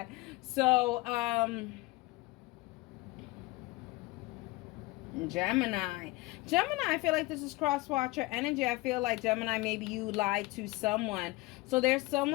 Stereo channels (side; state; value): right; quieter; 21.6 dB